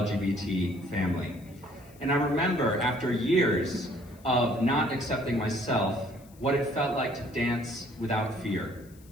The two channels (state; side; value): noise; left; hiss, 27 dB below the sound